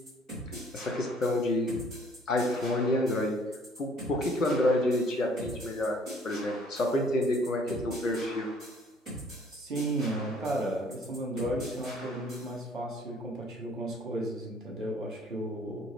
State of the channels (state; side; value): normal; both; correlation 0.59